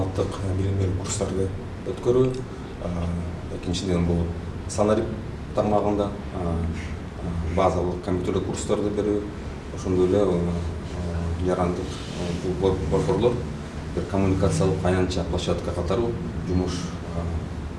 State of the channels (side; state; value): both; identical; correlation 1.00